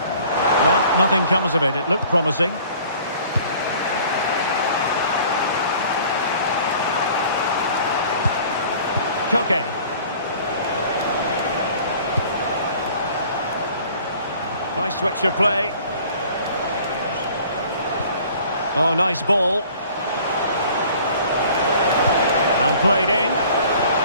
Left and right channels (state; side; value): inverted; both; correlation -0.50